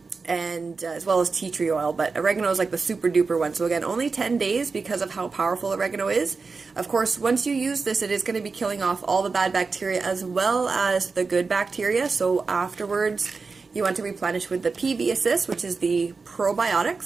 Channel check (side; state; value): left; quieter; 4.5 dB